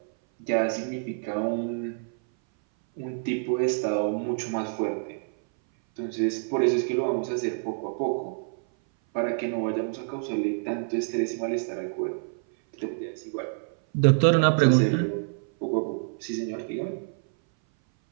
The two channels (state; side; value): silent; left; 58 dB below the other